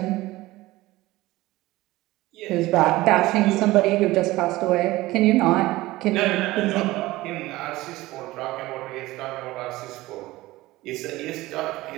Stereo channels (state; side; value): quieter; left; 18.5 dB